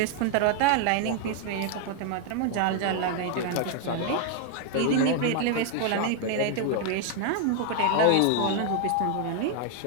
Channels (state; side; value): different; both; correlation 0.00